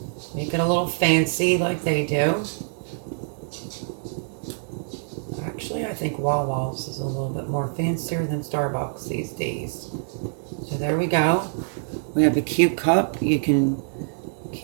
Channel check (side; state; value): left; silent; digital silence